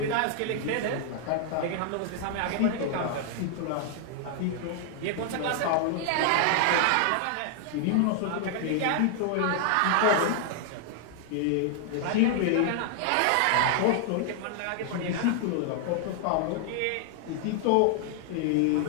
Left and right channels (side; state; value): both; different; correlation 0.00